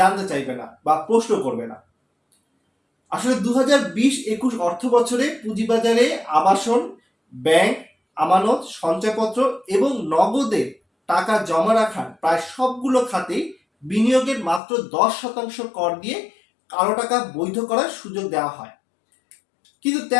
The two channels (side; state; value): right; drops out; at 14.6 s